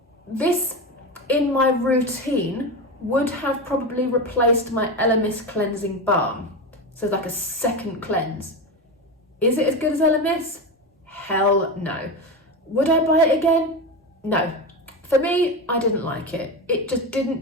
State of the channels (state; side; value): normal; both; correlation 0.20